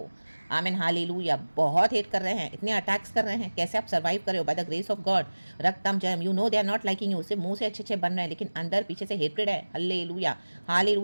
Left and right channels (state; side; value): inverted; both; correlation -1.00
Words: आमीन, हालेलुया। बहुत हेट कर रहे हैं, इतने अटैक्स कर रहे हैं, कैसे आप सर्वाइव कर रहे हो? By the grace of God, रक्तम जयम। You know they are not liking you, सिर्फ मुंह से अच्छे अच्छे बन रहे हैं, लेकिन अंदर पीछे से हेट्रेड है, हालेलुया,